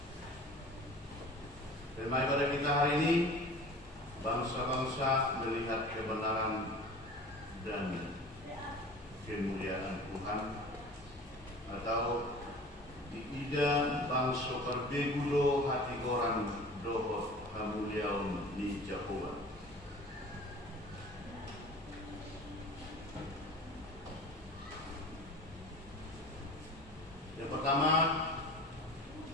Tema ibadah kita hari ini, bangsa-bangsa melihat kebenaran dan kemuliaan Tuhan, atau diida bangsa perbegulo hati orang dohot kemuliaan ni Jehovah. Yang pertama,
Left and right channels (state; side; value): normal; both; correlation 0.41